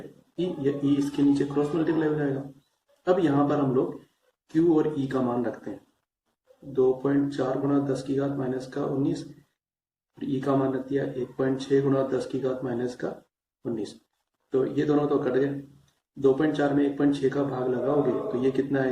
या E इसके नीचे क्रॉस मल्टीप्लाई हो जाएगा। अब यहां पर हम लोग Q और E का मान रखते हैं, 2.4 गुना 10 की घात -19, और E का मान रख दिया 1.6 गुना 10 की घात -19। तो ये दोनों तो कट गए, 2.4 में 1.6 का भाग लगाओगे तो ये कितना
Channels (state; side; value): identical; both; correlation 1.00